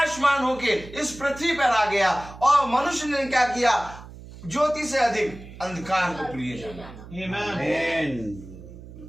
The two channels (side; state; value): right; noise; hum, 16 dB below the sound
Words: होके इस पृथ्वी पर आ गया। और मनुष्य ने क्या किया? ज्योति से अधिक अंधकार को प्रिय जाना। Amen.